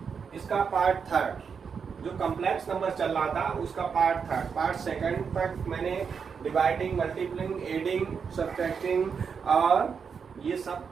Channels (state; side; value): quieter; left; 6.2 dB